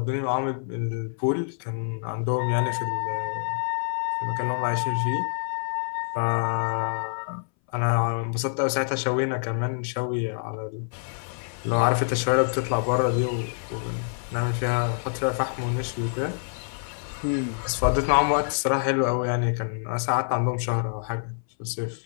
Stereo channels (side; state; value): right; silent; 59 dB below the other